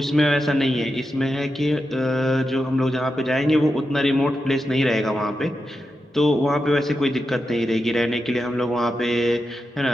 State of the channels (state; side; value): normal; both; correlation 0.88